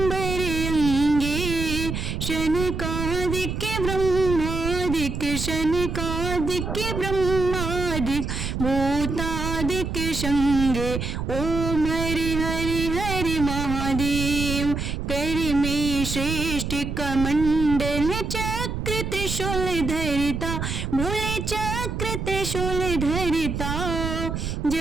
अंगे शनकादिक ब्रह्मादिक शनकादिक ब्रह्मादिक भूतादिक संगे ओम हरि हरि हरि महादेव कर में श्रेष्ठ कमंडल चक्र त्रिशूल धरिता बोले चक्र त्रिशूल धरिता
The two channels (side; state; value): right; noise; rumble, 4 dB below the sound